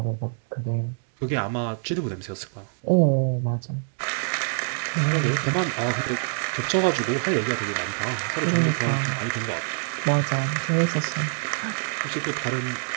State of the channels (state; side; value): silent; left; digital silence